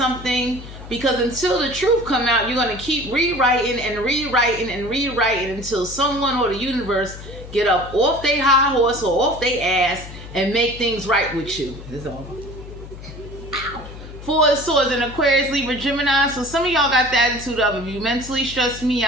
because until the truth come out, you're gonna keep rewriting and rewriting and rewriting until someone or the universe get up off their high horse or off their ass and make things right with you. That's all. 4 of Swords in Aquarius, Libra, Gemini. So some of y'all got the attitude of, if you mentally stress me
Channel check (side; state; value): left; noise; hum, 14 dB below the sound